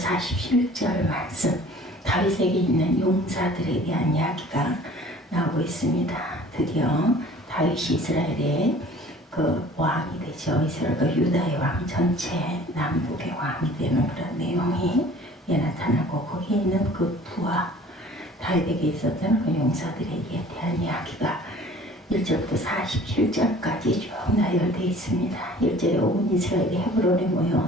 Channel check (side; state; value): both; normal; correlation 0.49